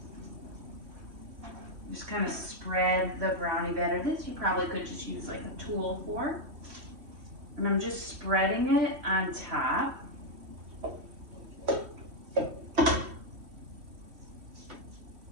Just kind of spread the brownie batter. This you probably could just use like a tool for. And I'm just spreading it on top.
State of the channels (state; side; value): late; left; 3.0 ms